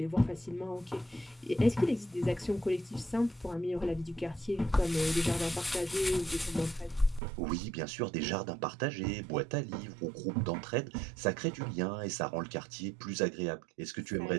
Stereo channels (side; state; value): left; drops out; at 7.2 s